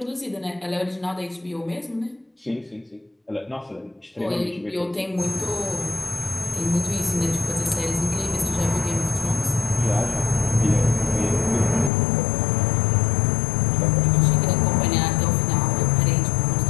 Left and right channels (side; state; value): right; drops out; at 11.9 s